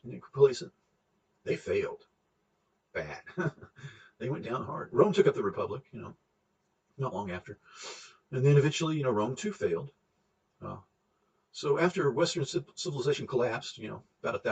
complacent. They failed bad. They went down hard. Rome took up the republic, not long after. And then eventually, Rome too failed. So after Western civilization collapsed, about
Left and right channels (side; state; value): both; identical; correlation 1.00